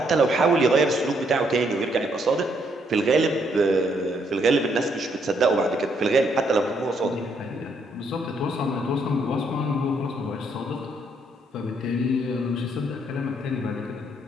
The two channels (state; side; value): normal; both; correlation 0.72